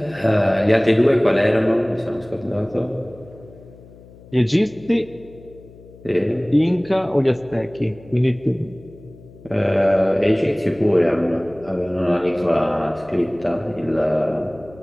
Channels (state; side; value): noise; left; hum, 22 dB below the sound